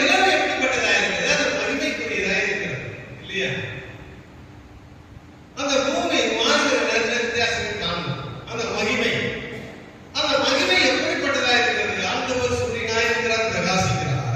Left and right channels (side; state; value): both; identical; correlation 1.00